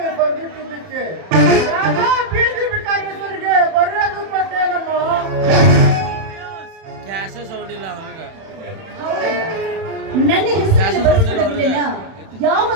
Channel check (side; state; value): left; late; 31 ms